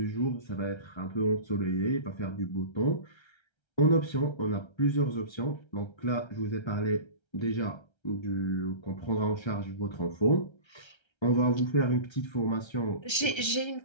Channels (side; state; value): right; late; 1.3 ms